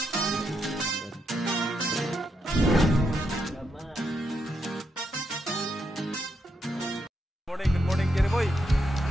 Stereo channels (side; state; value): both; normal; correlation 0.81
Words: morning Jerry Boy.